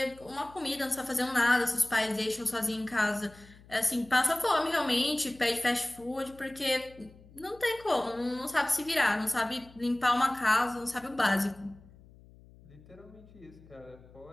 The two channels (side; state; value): left; noise; hum, 23 dB below the sound